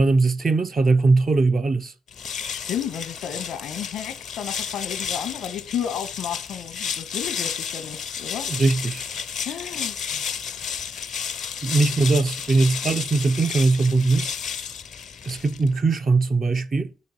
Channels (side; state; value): both; normal; correlation 0.84